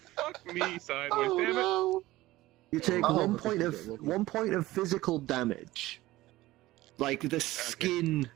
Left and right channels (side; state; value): left; quieter; 17.5 dB